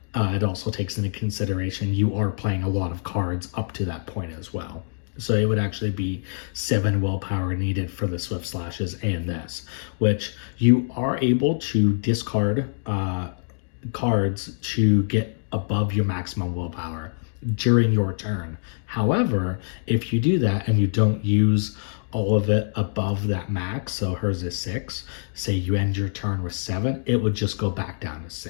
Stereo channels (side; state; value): right; silent; digital silence